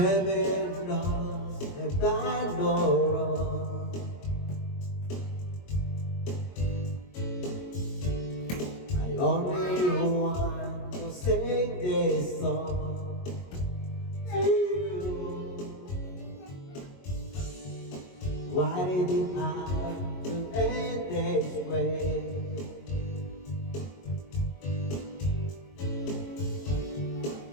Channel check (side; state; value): right; late; 22 ms